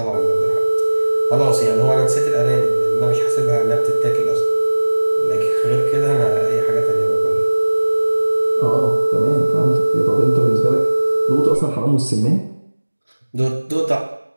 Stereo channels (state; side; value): inverted; both; correlation -1.00